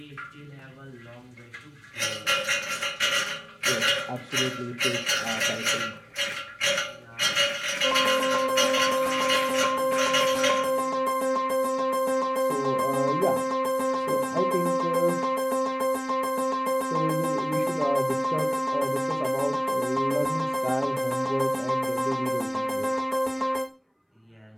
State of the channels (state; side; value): identical; both; correlation 1.00